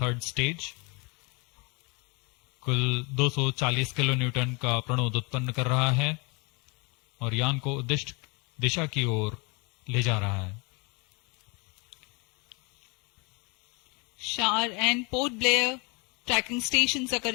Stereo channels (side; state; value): right; quieter; 30.0 dB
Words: stage कुल 240 किलो न्यूटन का प्रणोद उत्पन्न कर रहा है और यान को उद्दिष्ट दिशा की ओर ले जा रहा है। Shah and Port Blair tracking stations are